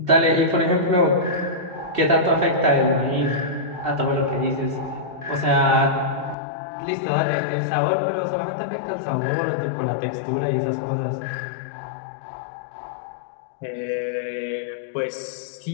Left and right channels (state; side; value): drops out; right; at 6.4 s